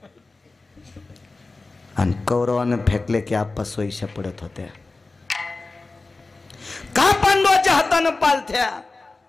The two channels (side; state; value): right; quieter; 3.5 dB